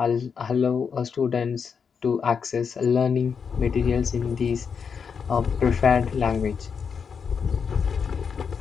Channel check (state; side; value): quieter; right; 6.3 dB